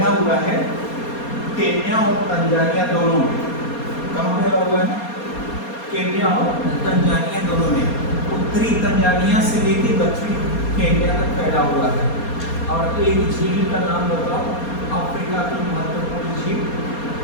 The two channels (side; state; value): right; late; 4.3 ms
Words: हुआ है केन्या और तंजानिया दोनों में। कहाँ फैला हुआ है? केन्या और तंजानिया दोनों में। उत्तरी तंजानिया से लेकर दक्षिणी केन्या तक फैला हुआ है। और एक झील का नाम बताओ, अफ्रीका की महत्वपूर्ण झील,